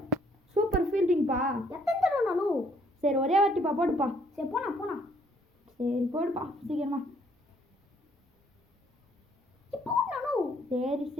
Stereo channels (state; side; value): normal; both; correlation 0.66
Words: சூப்பர் ஃபீல்டிங்ப்பா. எத்தனை தடவைண்ணா? சரி ஒரே வாட்டிப்பா போடுப்பா. சரி போண்ணா. சரி போடுப்பா சீக்கிரமா.